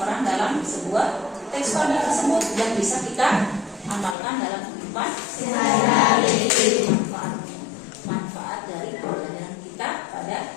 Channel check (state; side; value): drops out; right; at 4.2 s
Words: dalam sebuah teks fabel tersebut yang bisa kita amalkan dalam kehidupan sehari-hari. Manfaat dari pelajaran kita